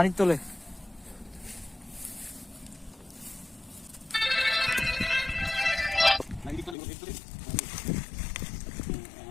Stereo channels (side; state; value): right; drops out; at 6.8 s